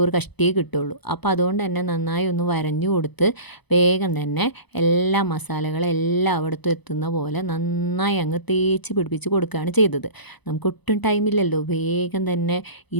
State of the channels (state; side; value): late; right; 0.99 ms